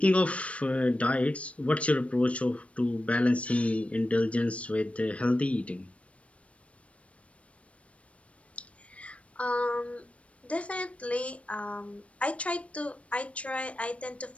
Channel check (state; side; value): late; right; 0.063 ms